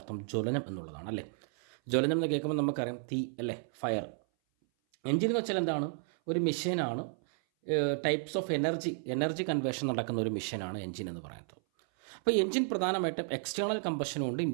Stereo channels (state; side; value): silent; left; 56 dB below the other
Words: ജ്വലനം എന്നുള്ളതാണ്, അല്ലേ? ജ്വലനം എന്ന് കേൾക്കുമ്പോൾ നമുക്കറിയാം തീ, അല്ലേ? ഫയർ. എഞ്ചിൻ എന്ന് വെച്ചാൽ എന്താണ്? ഒരു മെഷീനാണ്. ടൈപ്സ് ഓഫ് എനർജി കൺവേർഷൻ നടക്കുന്ന ഒരു മെഷീനാണ് എഞ്ചിൻ എന്ന് പറയുന്നത്. അപ്പോൾ എഞ്ചിൻ പ്രധാനമായിട്ടും എക്സ്റ്റേണൽ കമ്പഷനും ഉണ്ട്,